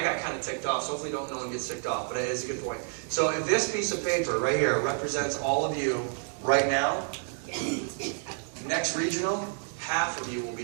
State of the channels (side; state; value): left; silent; 57 dB below the other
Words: got kind of ticked off, so hopefully no one gets ticked off, but it is a good point. So if this piece of paper right here represents all of you right now, next regional, half of you will be